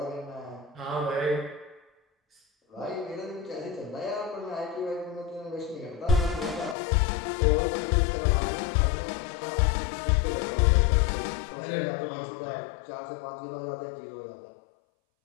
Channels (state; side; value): drops out; right; at 6.8 s